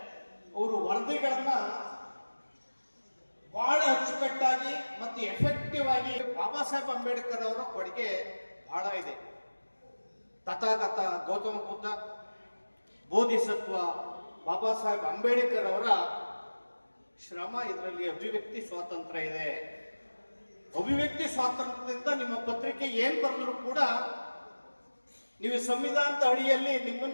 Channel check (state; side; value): inverted; both; correlation -1.00